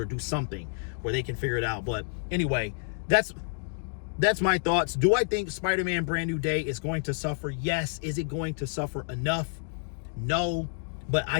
do something where they can figure it out. But anyway, that's my thoughts. Do I think Spider-Man Brand New Day is going to suffer? Yes. Is it going to suffer enough? No. But I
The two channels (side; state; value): right; silent; 59 dB below the other